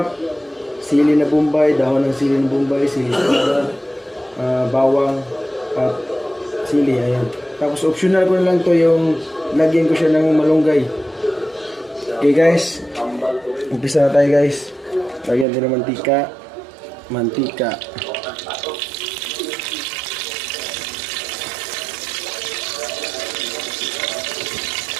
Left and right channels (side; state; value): left; drops out; at 15.5 s